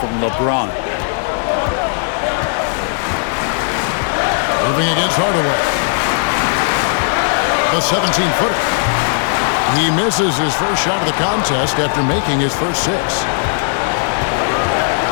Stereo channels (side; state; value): right; silent; digital silence